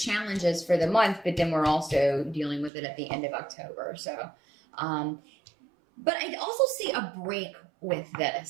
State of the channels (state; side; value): drops out; left; at 2.7 s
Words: is for the month, but then we're also dealing with it at the end of October. So, but I also see a break with